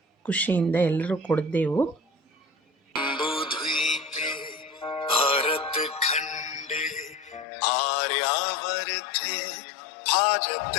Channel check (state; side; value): drops out; right; at 7.5 s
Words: ಖುಷಿಯಿಂದ ಎಲ್ಲರೂ ಕುಡಿದೆವು.